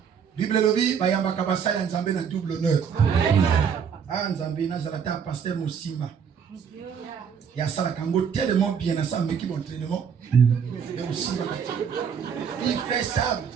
Bible lobi bayamba kabasa ya Nzambe na double honneur. Ah Nzambe na zalata pasteur Mosimba. Il y a ça tellement bien à ça, mais qui entraînement. Il fait ça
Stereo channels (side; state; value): left; quieter; 7.1 dB